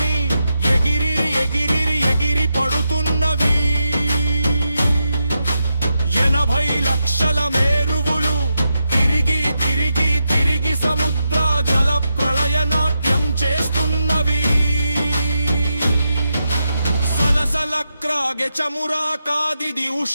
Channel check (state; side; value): inverted; both; correlation -0.86